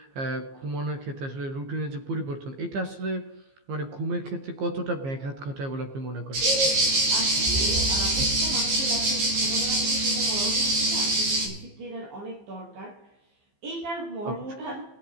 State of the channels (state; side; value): late; left; 15 ms